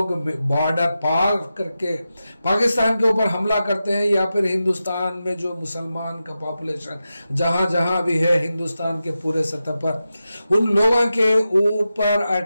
बॉर्डर पार करके पाकिस्तान के ऊपर हमला करते हैं या फिर हिंदुस्तान में जो मुसलमान का पॉपुलेशन जहां जहां भी है हिंदुस्तान के पूरे सतह पर उन लोगों के ऊपर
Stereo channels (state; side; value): inverted; both; correlation -0.91